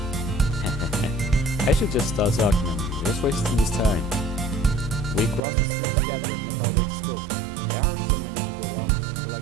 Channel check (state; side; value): drops out; left; at 5.4 s